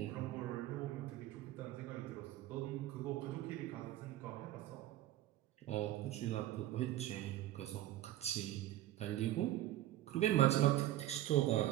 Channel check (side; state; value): left; quieter; 14.3 dB